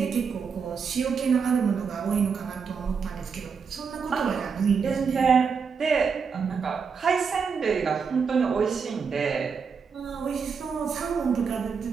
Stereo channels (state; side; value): quieter; left; 5.8 dB